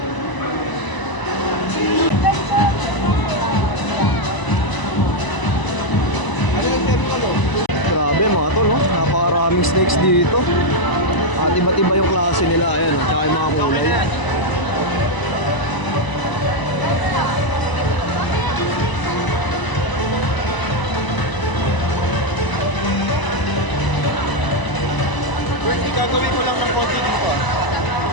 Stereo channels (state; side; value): late; right; 1.0 ms